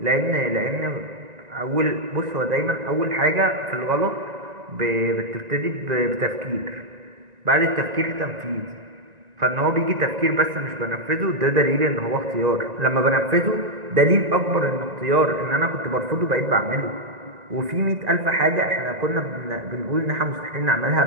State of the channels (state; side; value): late; left; 1.9 ms